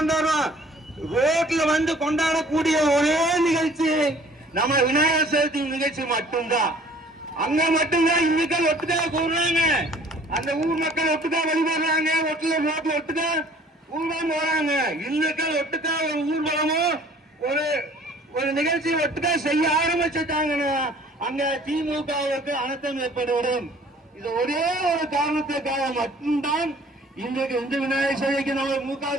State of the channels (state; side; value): normal; both; correlation 0.53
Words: ரோட்ல வந்து கொண்டாடக்கூடிய ஒரே நிகழ்ச்சி நம்ம விநாயகர் சதுர்த்தி நிகழ்ச்சி மட்டும்தான். அங்க மட்டும்தான் இந்துக்கள் ஒட்டுக்கா கூடுறாங்க, அந்த ஊர் மக்கள் ஒட்டுக்கா வழிபடுறாங்க, ரோட்ல ஒட்டுக்கா ஊர்வலம் போறாங்க. இந்துக்கள் ஒட்டுக்கா ஒரு ஊர்வலமோ ஒரு நிகழ்ச்சி ஒட்டுக்கா செய்ய ஆரம்பிச்சுட்டாங்கன்னா அங்க திமுகவுக்கு அனர்த்தம் ஏற்பட்டுவிடும். இது ஒரே ஒரு காரணத்துக்காக மட்டும்தான் இன்றைக்கு இந்து விநாயகர் சதுர்த்திக்கு நம்ம மு.க.